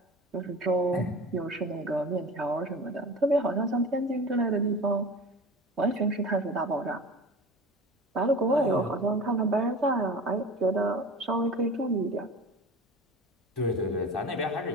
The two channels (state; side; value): normal; both; correlation 0.35